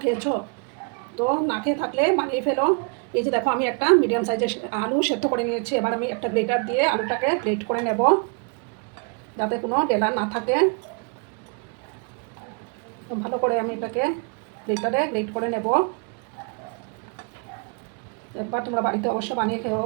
খেয়েছো? তো না খেয়ে থাকলে বানিয়ে ফেলো। এই যে দেখো, আমি একটা মিডিয়াম সাইজের আলু সেদ্ধ করে নিয়েছি। এবার আমি একটা গ্রেটার দিয়ে আলুটাকে গ্রেট করে নেব, যাতে কোনো ডেলা না থাকে। ভালো করে আমি এটাকে গ্রেটারে গ্রেট করে নেব। একবার তোমরা বাড়িতে অবশ্য বানিয়ে খেও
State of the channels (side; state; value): left; quieter; 36.5 dB